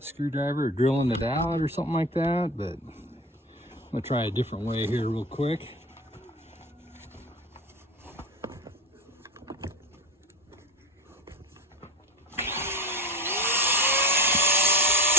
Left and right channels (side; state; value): both; normal; correlation 0.28